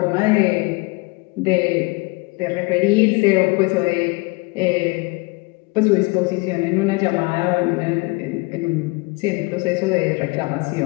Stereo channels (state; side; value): quieter; right; 27.0 dB